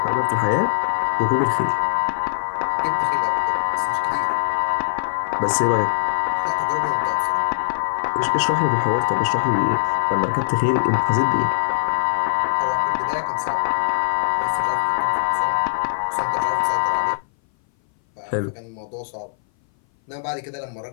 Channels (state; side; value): silent; right; 59 dB below the other